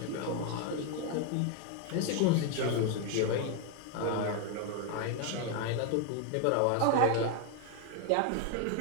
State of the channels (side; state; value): both; different; correlation 0.01